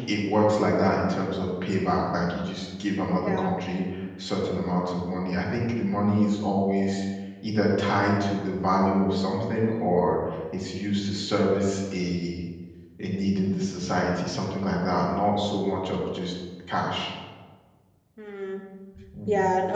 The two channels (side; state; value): both; identical; correlation 1.00